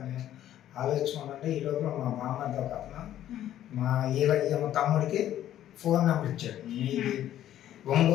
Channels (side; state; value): right; quieter; 12.0 dB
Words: అని ఆలోచించుకుంటే ఈ లోపల మా బామ్మర్ది ఒక అతను మా తమ్ముడికి ఫోన్ నెంబర్ ఇచ్చాడు. మీది